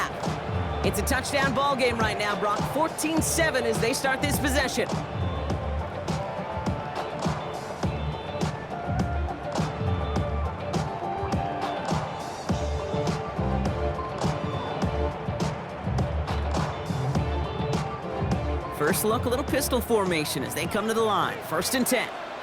It's a touchdown ball game right now, Brock. 14-7 as they start this possession. First look, a little pistol formation as they come to the line. 1st and 10.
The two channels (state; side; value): identical; both; correlation 1.00